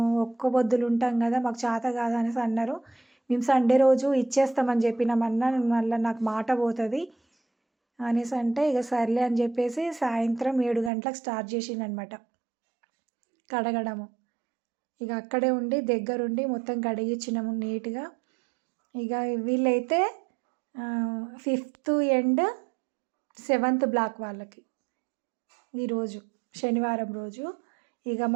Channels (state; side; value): drops out; left; at 10.9 s